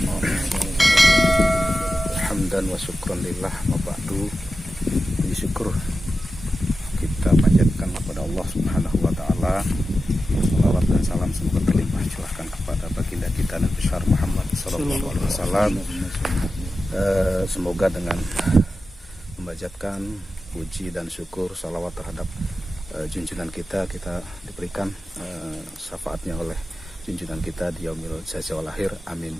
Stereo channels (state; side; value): normal; both; correlation 0.92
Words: Hamdan wa syukran lillah wa ba'du. Puji syukur kita panjatkan kepada Allah Subhanahu wa taala. Salawat dan salam semoga terlimpah curahkan kepada baginda kita Nabi besar Muhammad sallallahu alaihi wasallam. Semoga dengan memanjatkan puji dan syukur salawat terhadap junjungan kita diberikan syafaatnya oleh junjungan kita di yaumil jaza wal akhir. Amin